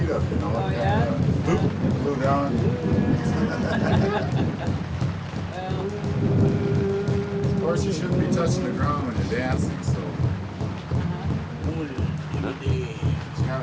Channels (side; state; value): both; identical; correlation 1.00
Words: up, you know. Oh, yeah? Glue down. Of course, you shouldn't be touching the ground when you're dancing, so you